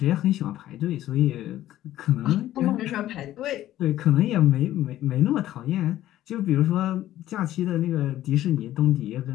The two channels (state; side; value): quieter; right; 13.6 dB